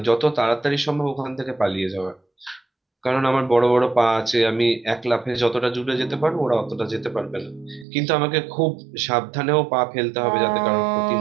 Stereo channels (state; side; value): drops out; left; at 7.9 s